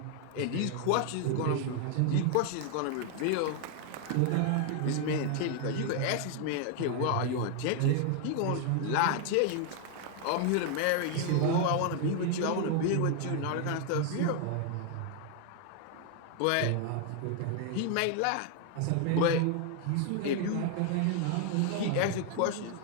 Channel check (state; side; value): different; both; correlation 0.00